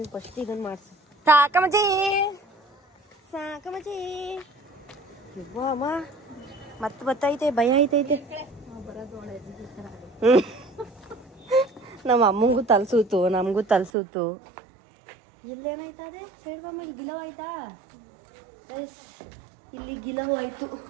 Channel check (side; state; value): left; drops out; at 13.9 s